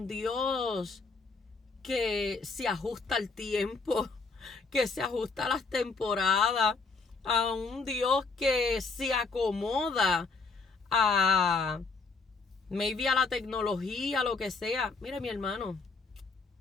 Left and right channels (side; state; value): right; quieter; 4.3 dB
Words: Dios que se ajusta al tiempo, que se ajusta a las temporadas, a un Dios que se acomoda a maybe a la tecnología, lo que sea. Mire, mi hermano,